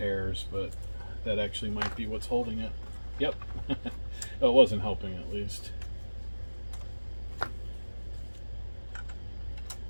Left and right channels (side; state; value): both; inverted; correlation -1.00